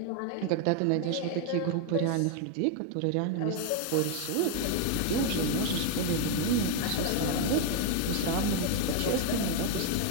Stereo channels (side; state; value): both; different; correlation 0.01